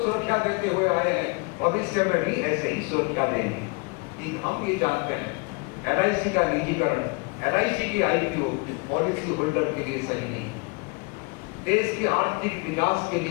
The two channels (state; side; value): quieter; right; 30.0 dB